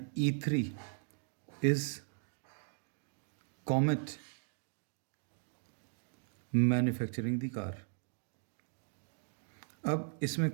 E3 is Comet manufacturing the car. अब इसमें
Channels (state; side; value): silent; left; digital silence